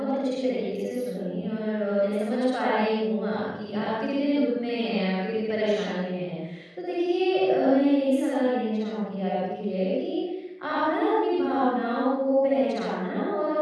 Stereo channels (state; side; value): identical; both; correlation 1.00